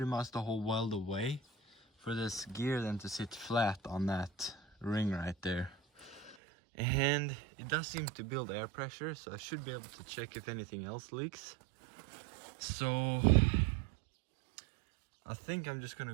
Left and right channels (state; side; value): drops out; left; at 6.4 s